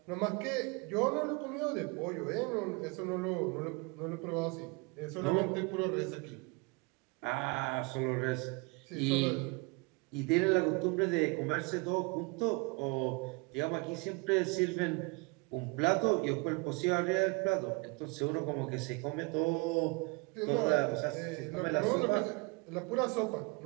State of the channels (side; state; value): left; quieter; 28.3 dB